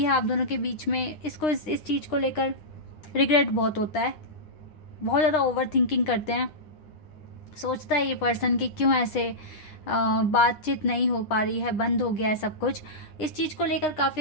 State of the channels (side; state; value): right; late; 9.8 ms